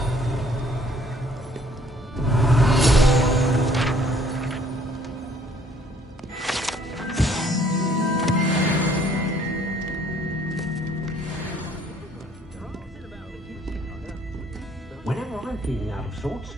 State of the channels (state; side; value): normal; both; correlation 0.61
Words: Whenever I'm feeling out of sorts,